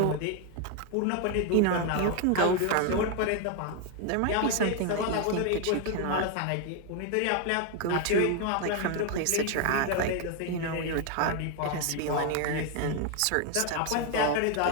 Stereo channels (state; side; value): different; both; correlation 0.01